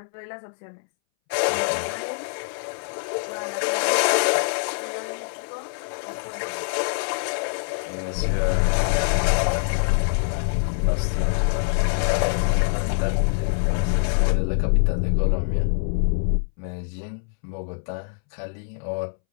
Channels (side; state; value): right; silent; 62 dB below the other